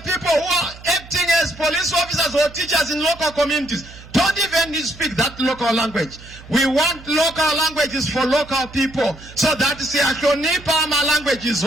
people who are acting as police officers or teachers in local communities don't even speak that local language. We want local languages for local people so that our language is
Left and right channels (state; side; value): noise; right; hum, 19 dB below the sound